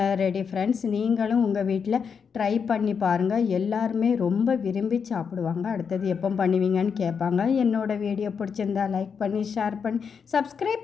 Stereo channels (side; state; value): right; quieter; 6.4 dB